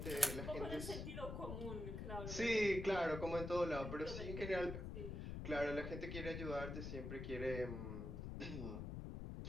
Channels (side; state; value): left; noise; rumble, 5 dB below the sound